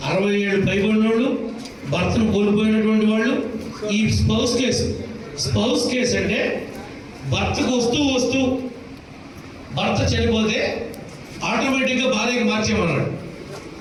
67 పైబడిన వాళ్ళు, భర్తను కోల్పోయినటువంటి వాళ్ళు. ఈ స్పౌస్ కేసు అంటే భర్తకు వస్తూ భర్త చనిపోతే ఆటోమేటిక్గా భార్యకి మార్చేమన్నాడు.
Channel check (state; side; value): identical; both; correlation 1.00